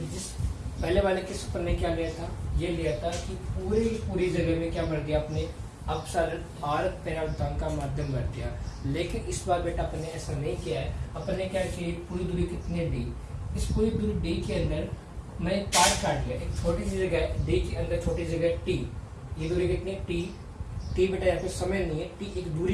जिस पहले वाले किस पर ने क्या लिया था, ये लिया था कि पूरी जगह में क्या भर दिया अपने एप्सिलॉन आर पैरामीटर का माध्यम भर दिया। लेकिन इस बार बेटा अपने ऐसा नहीं किया है। अपने क्या किया, पूरी दूरी कितनी डी, इस पूरी दूरी डी के अंदर मैं पार्ट काट लिया, एक छोटी सी जगह डी के अंदर छोटी जगह टी, ये दूरी कितनी टी, टी बेटा यहाँ पे समय नहीं है, टी एक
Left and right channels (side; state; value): both; identical; correlation 1.00